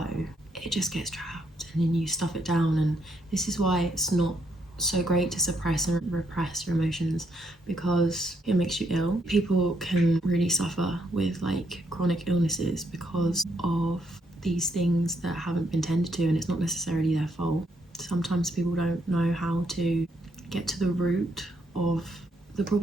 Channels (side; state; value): both; normal; correlation 0.74